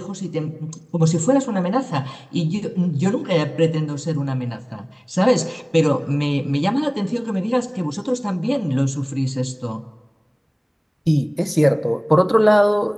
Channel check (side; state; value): both; identical; correlation 1.00